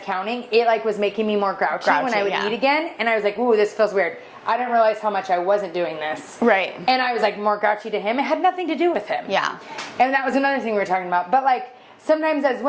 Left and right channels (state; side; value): identical; both; correlation 1.00